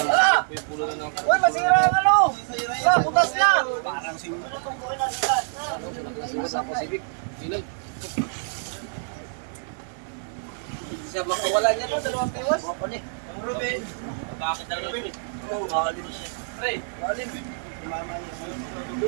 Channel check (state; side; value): silent; left; digital silence